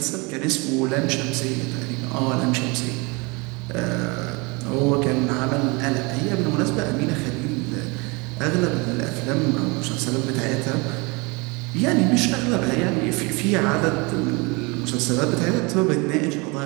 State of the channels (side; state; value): left; quieter; 27.7 dB